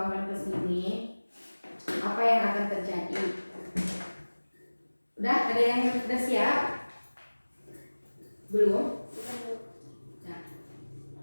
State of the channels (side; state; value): both; inverted; correlation -1.00